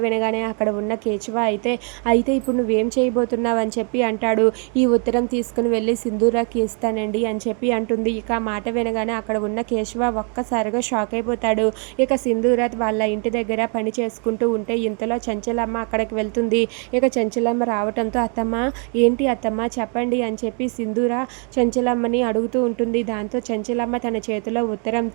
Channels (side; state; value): left; quieter; 38.7 dB